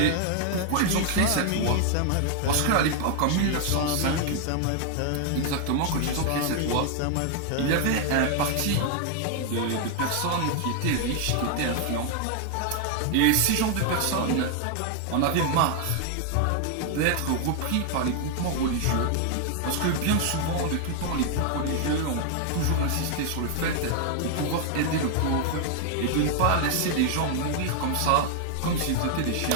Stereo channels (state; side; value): different; both; correlation 0.00